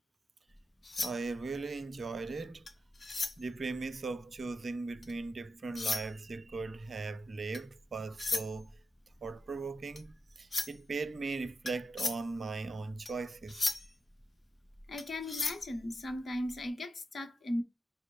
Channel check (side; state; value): both; normal; correlation 0.88